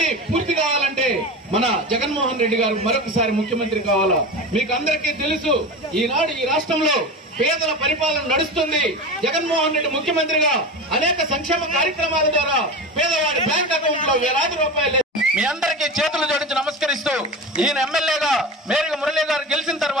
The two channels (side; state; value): both; normal; correlation 0.27